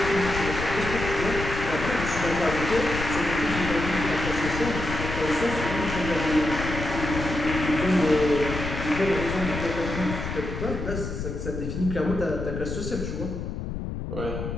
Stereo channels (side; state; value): left; noise; rumble, 5 dB below the sound